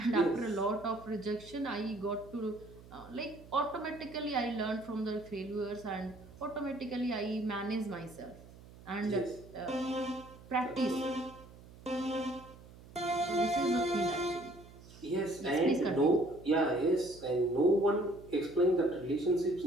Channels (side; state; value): right; noise; hum, 20 dB below the sound